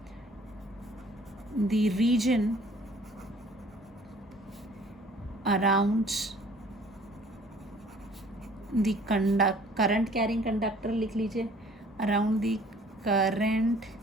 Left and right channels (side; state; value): both; normal; correlation 0.54